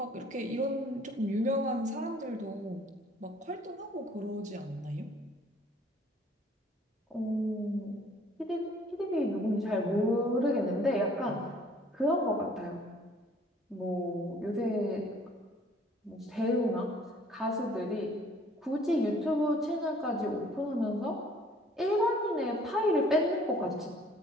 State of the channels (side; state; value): both; normal; correlation 0.57